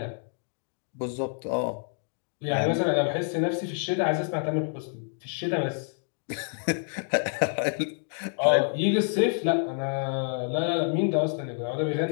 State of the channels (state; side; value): silent; right; 59 dB below the other